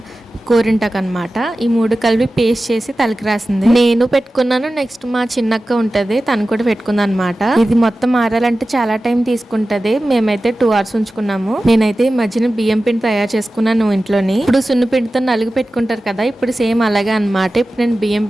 గోరింటాకు అనమాట, ఈ 3 కలిపి పేస్ట్ చేసి తలకి రాసింది. నేను పెట్టుకున్నాను, నెక్స్ట్ మా చిన్నక్క ఉంటది, తను కూడా పెట్టుకుంది అనమాట. ఇది మొత్తం ఆరాలంటే చాలా టైం తీసుకుంటది. మేమైతే 2 hours ఉంచుకున్నాము. నేనైతే ఈ మధ్యన బియ్యం పిండి తయారు చేసుకున్నాను ఇంట్లోని. ఇప్పుడు సున్ను పిండితో నలుగు పెట్టుకుంటారు కదా, ఇప్పుడు సేమ్ అలాగే అనమాట. ఇప్పుడు నేను బియ్యం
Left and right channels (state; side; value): normal; both; correlation 0.95